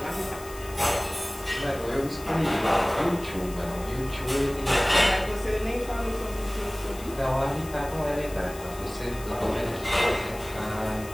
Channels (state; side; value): noise; left; hiss, 17 dB below the sound